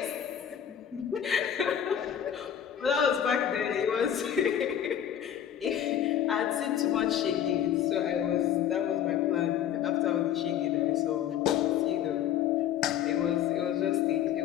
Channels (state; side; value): quieter; right; 9.8 dB